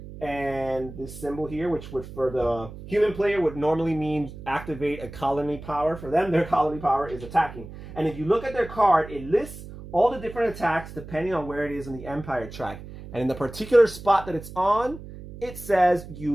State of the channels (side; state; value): right; noise; hum, 14 dB below the sound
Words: And this symbol here, which would for the human player would normally mean activate a colony power. For them, their colony power is attacking. And if you look at their card, it lists all the different attacks depending on where it is in the Empire track. And in the particular spot that it's on, it says